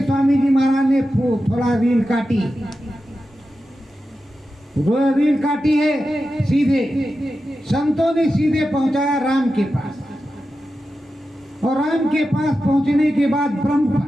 स्वामी जी महाराज ने थोड़ा रील काटी, रील काटी है सीधे। संतों ने सीधे पहुंचाया राम के पास, और राम के पास पहुंचने के बाद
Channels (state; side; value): normal; both; correlation 0.91